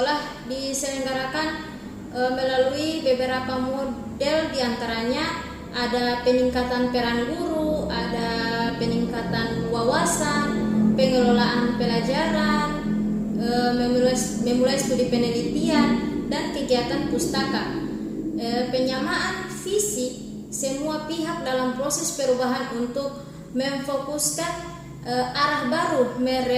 diselenggarakan melalui beberapa model, diantaranya ada peningkatan peran guru, ada peningkatan wawasan, pengelolaan pelajaran, memulai studi penelitian dan kegiatan pustaka. Penyamaan visi semua pihak dalam proses perubahan untuk memfokuskan arah baru,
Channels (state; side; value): identical; both; correlation 1.00